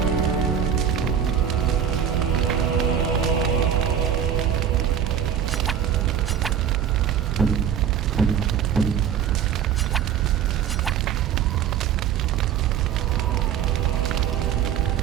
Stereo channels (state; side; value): quieter; left; 8.9 dB